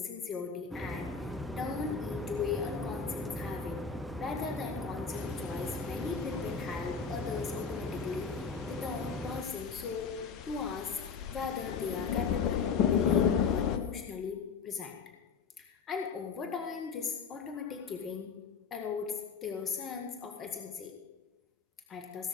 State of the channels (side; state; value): right; quieter; 5.5 dB